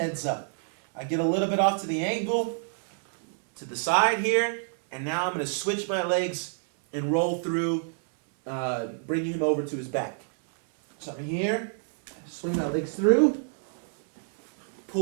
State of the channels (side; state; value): left; silent; 60 dB below the other